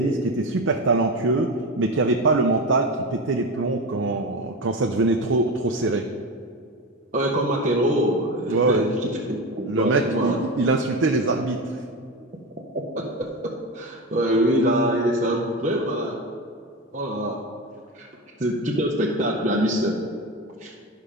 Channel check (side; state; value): both; normal; correlation 0.22